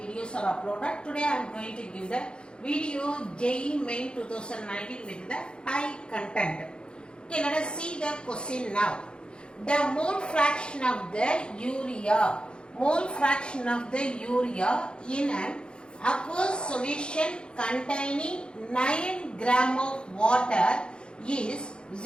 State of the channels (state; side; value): late; right; 0.052 ms